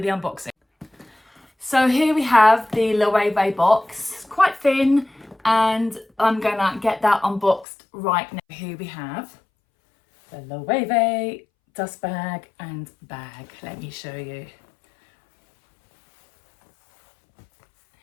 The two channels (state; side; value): drops out; right; at 7.7 s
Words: the unboxing. So here we have the Loewe box. It's quite thin and I'm gonna get that unboxed right now. Here we have the Loewe dust bag and bag. Let me show you.